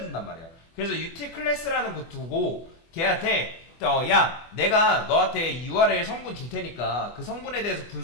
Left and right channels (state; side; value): late; right; 24 ms